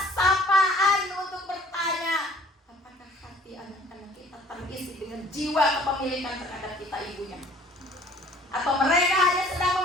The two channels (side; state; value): both; normal; correlation 0.54